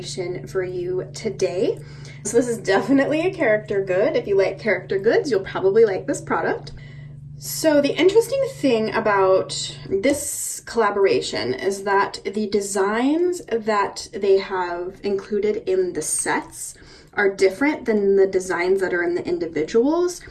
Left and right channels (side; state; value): both; identical; correlation 1.00